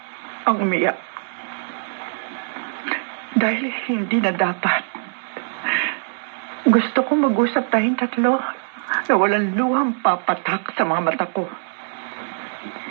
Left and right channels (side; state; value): left; silent; digital silence